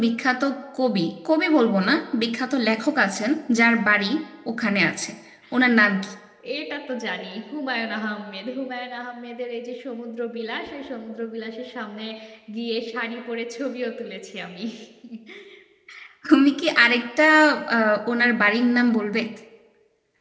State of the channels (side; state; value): both; identical; correlation 1.00